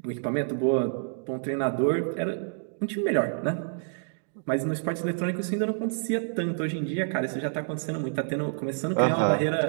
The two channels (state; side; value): silent; left; digital silence